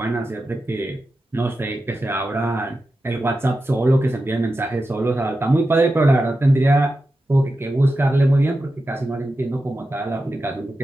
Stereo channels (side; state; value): both; normal; correlation 0.91